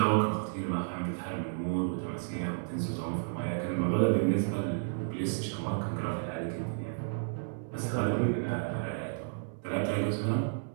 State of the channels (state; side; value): silent; left; 56 dB below the other